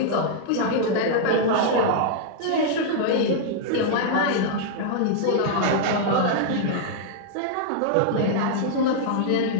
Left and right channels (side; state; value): both; different; correlation -0.01